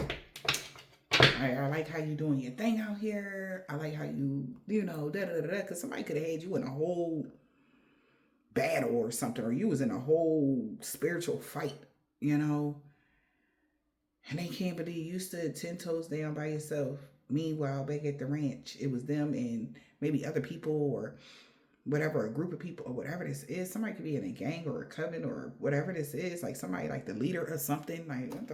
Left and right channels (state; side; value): identical; both; correlation 1.00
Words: I like how you doing your thing out here. I like how you know, da-da-da-da. Because somebody could have had you in a whole battle or something, or you was in a whole spiritual fight, you know, and they can't believe you stood 10 toes down by yourself. Meanwhile, back at the ranch, it was them and maybe other people or whatever, a group of people or whatever this is. Somebody could be in a gang or a coven or whatever this is, like somebody like the leader or something. Like, what